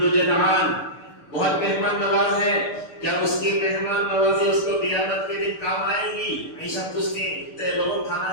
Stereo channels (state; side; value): late; right; 6.7 ms